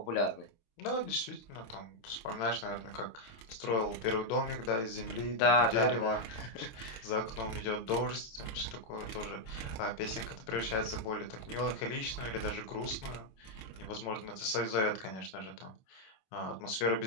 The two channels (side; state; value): right; late; 27 ms